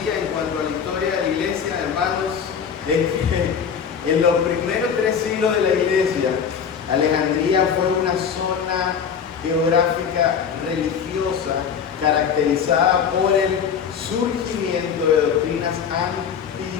en cuanto a la historia de la iglesia, hermanos, es que en los primeros 3 siglos de la iglesia, Alejandría fue una zona geográfica religiosa caracterizada por el surgimiento de doctrinas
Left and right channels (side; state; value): right; quieter; 7.1 dB